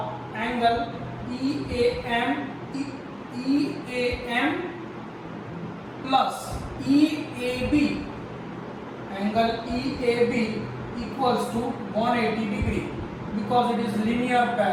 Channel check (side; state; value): both; identical; correlation 1.00